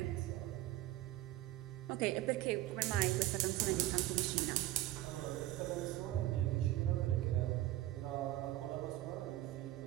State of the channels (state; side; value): quieter; left; 15.0 dB